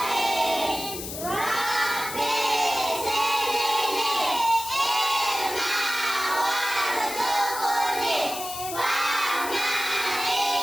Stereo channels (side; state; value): left; noise; hiss, 8 dB below the sound